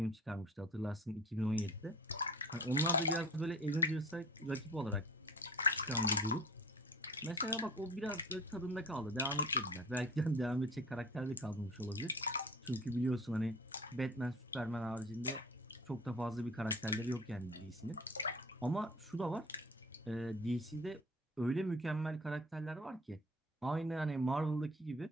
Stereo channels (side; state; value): both; normal; correlation 0.42